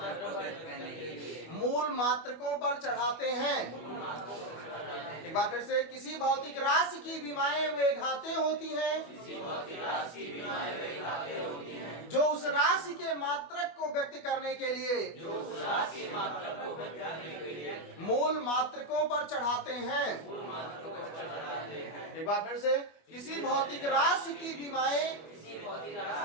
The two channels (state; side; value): late; right; 25 ms